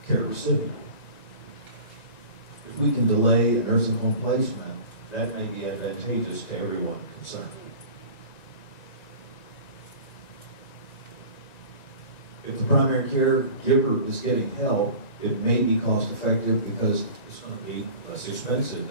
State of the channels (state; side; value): late; right; 1.9 ms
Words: care recipient. If we can delay a nursing home placement, that may be advantageous to everyone concerned. If the primary caregiver is getting help, it may be cost effective because it's going to be less expensive